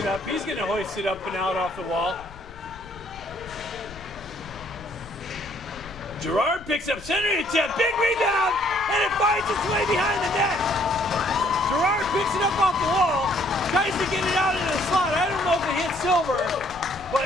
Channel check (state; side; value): noise; left; rumble, 18 dB below the sound